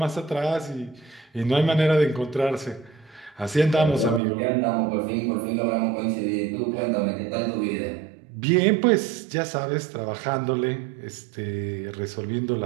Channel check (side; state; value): left; drops out; at 4.2 s